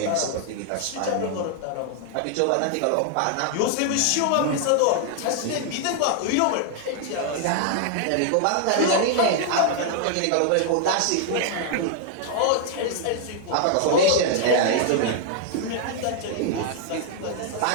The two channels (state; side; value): different; both; correlation 0.00